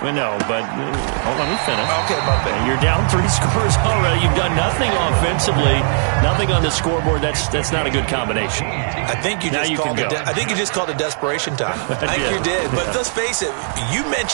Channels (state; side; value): silent; left; 58 dB below the other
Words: No, but hold on, let me finish. Okay, my bad. You're down 3 scores already. You've done nothing offensively, nothing on the scoreboard. That's not a good combination. I think you just called it desperation time. I think you did. But let's face it, you